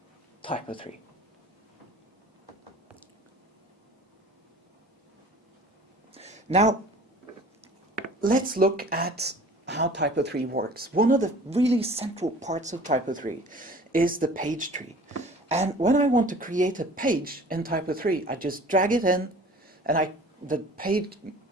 TYPO3. Now, let's look at how TYPO3 works. One of the really central parts of TYPO3 is the page tree. And when I want to create a page in TYPO3, I just drag it in, and the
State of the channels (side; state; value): both; normal; correlation 0.46